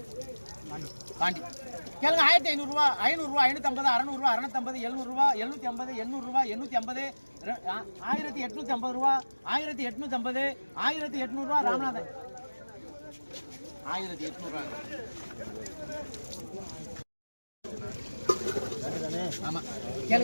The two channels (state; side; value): inverted; both; correlation -1.00